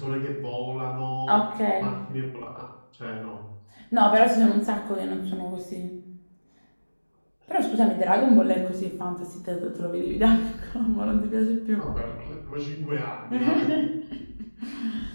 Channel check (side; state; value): both; inverted; correlation -1.00